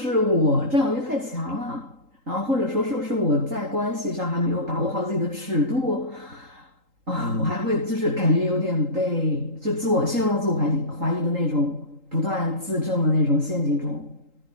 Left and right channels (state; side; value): late; left; 3.8 ms